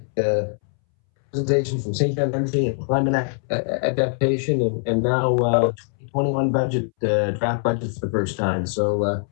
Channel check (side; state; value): right; silent; 64 dB below the other